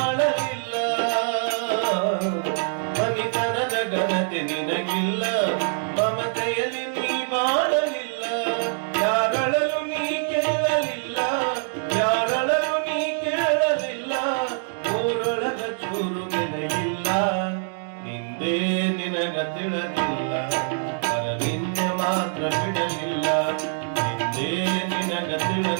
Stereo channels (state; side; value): silent; left; digital silence